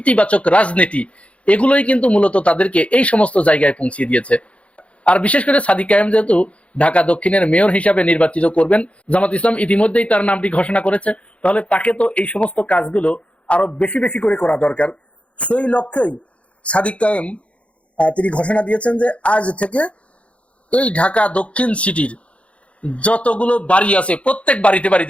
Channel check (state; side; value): late; right; 0.062 ms